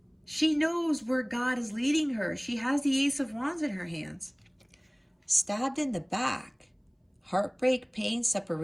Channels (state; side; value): identical; both; correlation 1.00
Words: She knows where God is leading her. She has the Ace of Wands in her hands. Stabbed in the back. Heartbreak, pain,